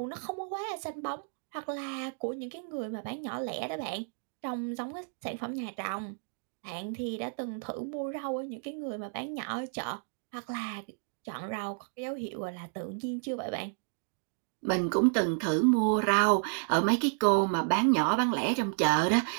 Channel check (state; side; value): silent; left; 57 dB below the other